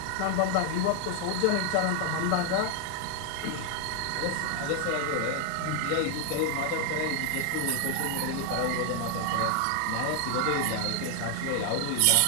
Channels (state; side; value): different; both; correlation 0.00